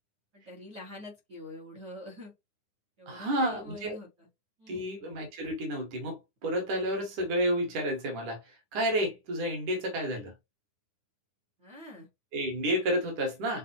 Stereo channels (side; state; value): left; late; 9.8 ms